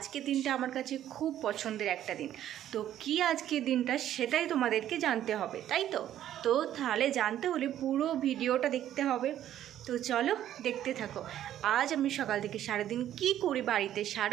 দিনটা আমার কাছে খুব পছন্দের একটা দিন। তো কি আজকের দিনটা সেটাই তোমাদেরকে জানতে হবে, তাই তো? তো তাহলে জানতে হলে পুরো ভিডিওটা দেখতে হবে। তো চলো দেখতে থাকো। আজ আমি সকাল থেকে সারাদিন কি করি বাড়িতে,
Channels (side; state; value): left; quieter; 11.7 dB